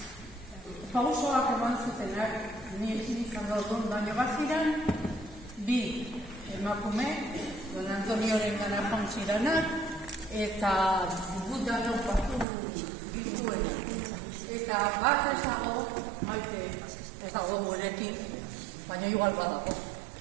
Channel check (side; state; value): left; drops out; at 12.5 s